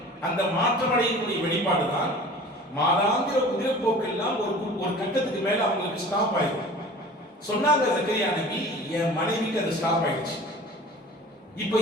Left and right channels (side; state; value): both; normal; correlation 0.42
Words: அந்த மாற்றமடையக்கூடிய வெளிப்பாடு தான் மாதாந்திர உதிரப்போக்கெல்லாம் ஒரு கட்டத்துக்கு மேல அவங்களுக்கு ஸ்டாப் ஆயிடும். சொன்னாங்க ஜக்கரியா நபி, என் மனைவிக்கு அது ஸ்டாப் ஆயிடுச்சு. இப்போ